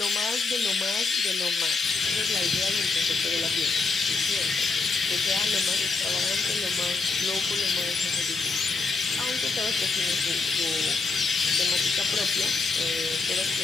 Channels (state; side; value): quieter; right; 4.1 dB